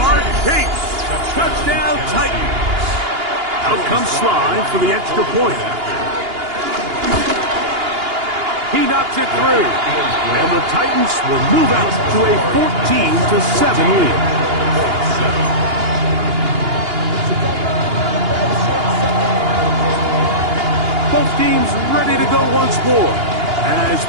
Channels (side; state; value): left; late; 2.8 ms